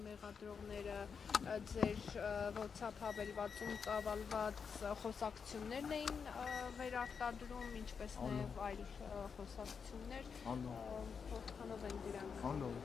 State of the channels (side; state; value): right; quieter; 6.1 dB